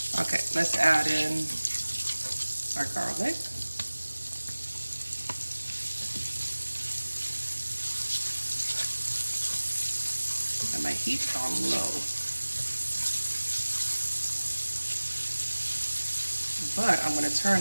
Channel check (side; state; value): both; inverted; correlation -1.00